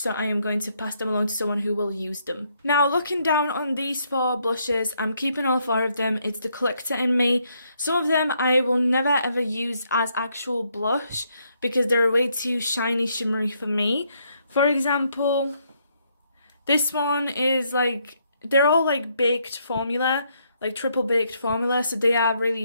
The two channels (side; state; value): both; inverted; correlation -0.73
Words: I am going to pass them along to someone who will use them. Now, looking down on these 4 blushes, I'm keeping all 4 of them. It's the collector in me. Some of them I will never ever use as actual blush because they're way too shiny, shimmery for me. For example, this one is like, they're all like baked formula, like triple baked formula, so they are